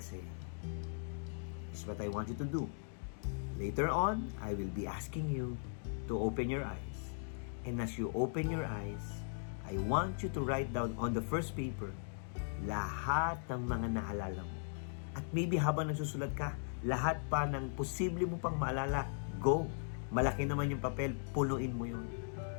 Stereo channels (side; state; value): right; silent; digital silence